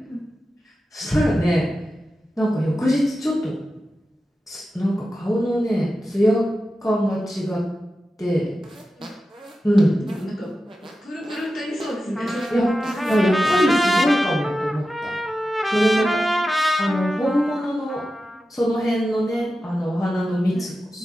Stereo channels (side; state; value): both; normal; correlation 0.92